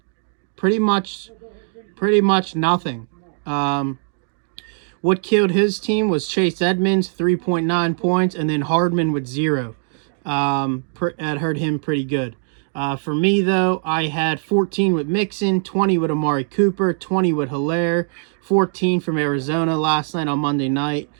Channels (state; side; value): silent; left; digital silence